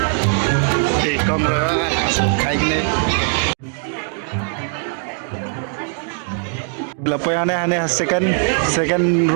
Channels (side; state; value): left; silent; 58 dB below the other